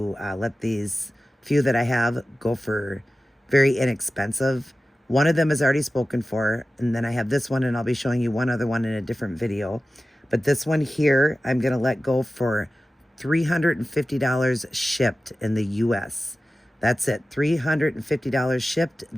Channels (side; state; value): both; normal; correlation 0.95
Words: let these few that I have go for very inexpensive. One of them is already spoken for, and then I have this one, and I'll be showing you one other one in a different video. But this one here, I'm going to let go for $350 shipped in the US. That's it, $350 shipped.